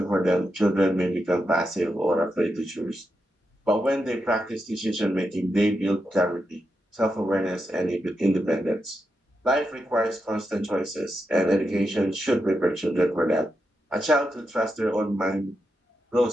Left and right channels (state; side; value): normal; both; correlation 0.86